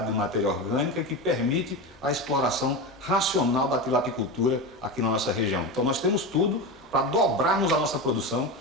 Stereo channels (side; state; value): both; normal; correlation 0.21